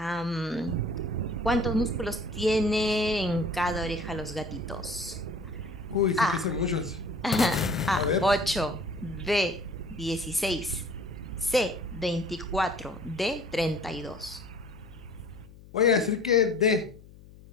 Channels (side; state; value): left; noise; hum, 21 dB below the sound